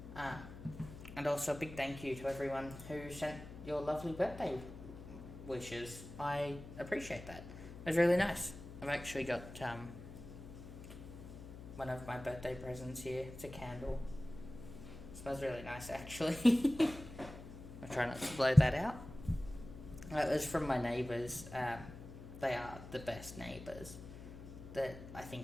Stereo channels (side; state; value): left; noise; hum, 13 dB below the sound